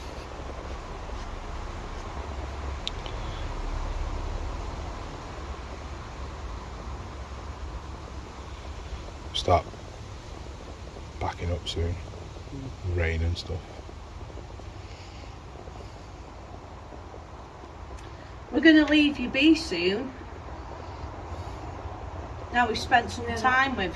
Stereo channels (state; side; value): identical; both; correlation 1.00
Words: Start backing up soon. Rain and stuff. We're going to leave you be soon. Now we've spent some time with